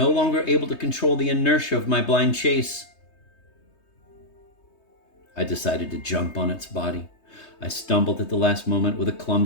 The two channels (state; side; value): late; right; 3.2 ms